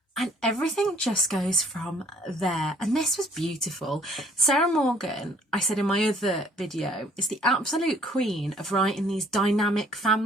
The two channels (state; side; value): normal; both; correlation 0.59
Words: and everything just goes from there. And this was beautiful. Sarah Morgan, I said in my other video, is the absolute queen of writing these dynamic